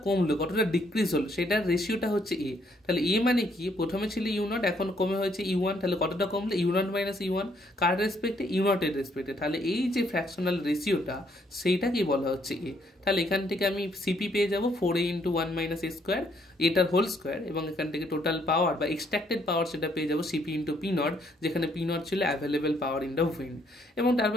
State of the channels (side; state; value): both; normal; correlation 0.69